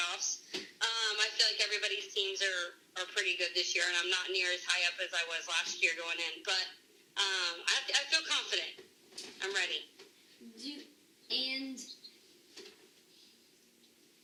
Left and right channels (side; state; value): both; identical; correlation 1.00